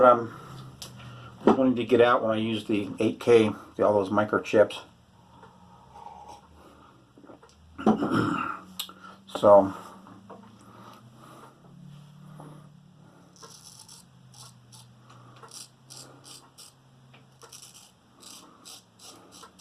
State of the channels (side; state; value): both; identical; correlation 1.00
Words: I'm wanting to get out when I use the 8K, all those microchips. So.